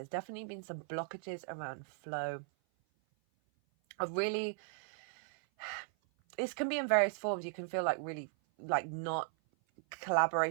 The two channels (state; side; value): silent; left; 53 dB below the other